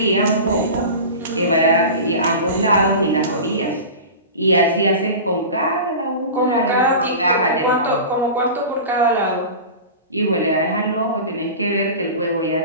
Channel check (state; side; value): inverted; both; correlation -0.32